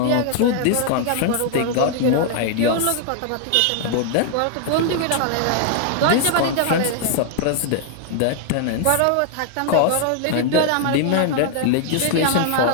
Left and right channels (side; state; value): both; different; correlation 0.00